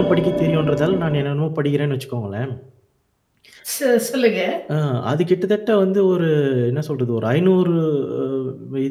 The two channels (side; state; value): both; identical; correlation 1.00